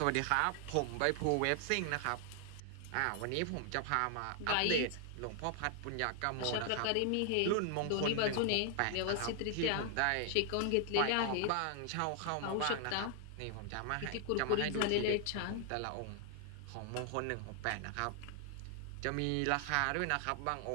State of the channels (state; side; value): different; both; correlation 0.00